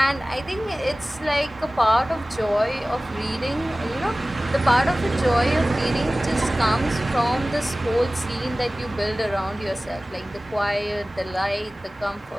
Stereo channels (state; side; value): normal; both; correlation 0.98